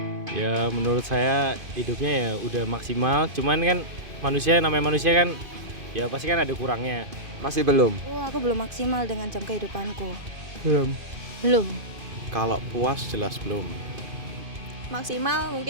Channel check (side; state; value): left; late; 2.5 ms